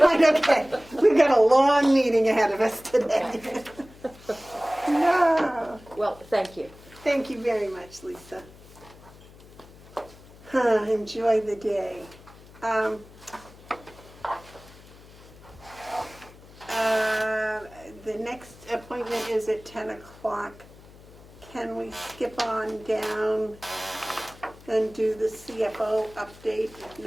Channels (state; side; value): noise; left; hum, 21 dB below the sound